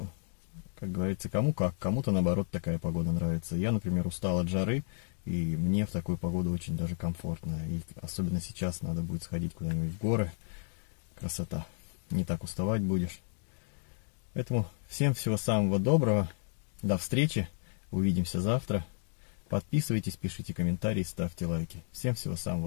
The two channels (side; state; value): right; silent; digital silence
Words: как говорится, кому как. Кому-то, наоборот, такая погода нравится. Я, например, устал от жары, и мне в такую погоду очень даже комфортно. И особенно сейчас надо будет сходить куда-нибудь в горы. Красота. Не так уставать будешь. Поэтому всем всего самого доброго. До встречи. Увидимся завтра. Подписывайтесь, пишите комментарии, ставьте лайки. Всем всего